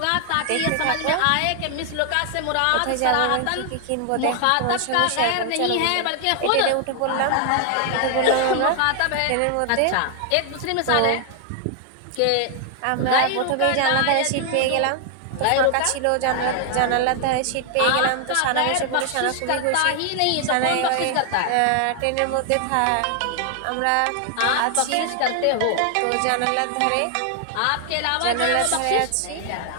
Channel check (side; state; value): both; different; correlation 0.00